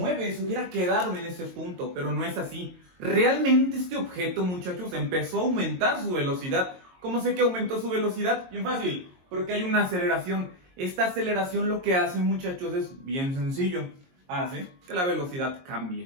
se hubiera quedado en ese punto, pero no es así. Realmente este objeto, muchachos, empezó a aumentar su velocidad. ¿Cómo sé que aumentó su velocidad? Bien fácil, porque hay una aceleración. Esta aceleración lo que hace, muchachos, es bien sencillo. Hace que la velocidad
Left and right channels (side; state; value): left; late; 22 ms